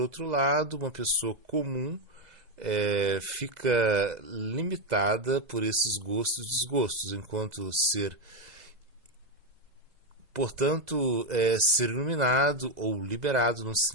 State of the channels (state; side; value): late; left; 2.0 ms